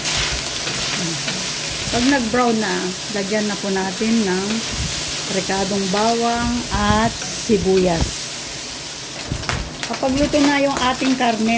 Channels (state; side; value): identical; both; correlation 1.00